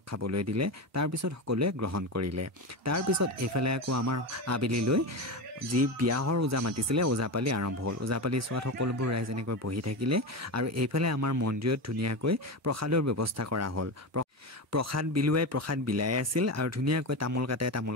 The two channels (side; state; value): both; normal; correlation 0.19